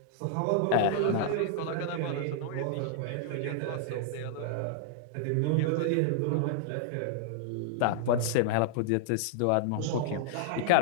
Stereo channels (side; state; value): both; different; correlation -0.01